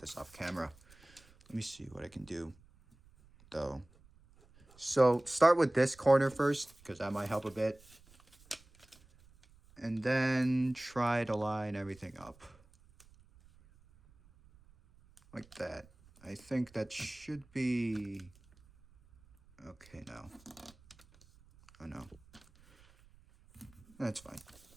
off camera. Let me see what I can do though. So start with this corner first because that might help a bit. And then try to line everything up. Like that. I think that should be okay now. Oh no. That's fine.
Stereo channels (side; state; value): right; noise; rumble, 27 dB below the sound